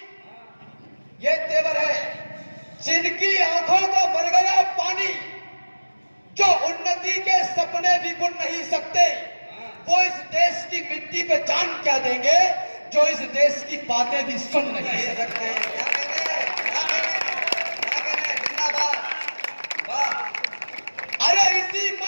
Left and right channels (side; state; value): both; inverted; correlation -1.00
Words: ये तेवर है। जिनकी आंखों का भर गया पानी, जो उन्नति के सपने भी बुन नहीं सकते, वो इस देश की मिट्टी पे जान क्या देंगे जो इस देश की बातें भी सुन नहीं सकते। अरे इसी